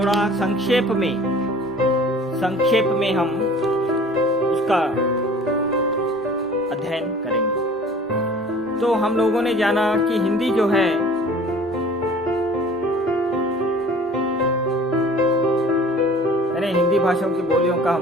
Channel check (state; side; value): normal; both; correlation 0.47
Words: संक्षेप में हम उसका अध्ययन करेंगे। तो हम लोगों ने जाना कि हिंदी जो है यानी हिंदी भाषाओं की बोलियों का